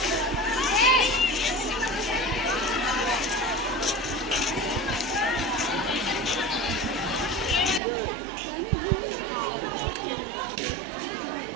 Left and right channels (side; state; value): left; drops out; at 7.8 s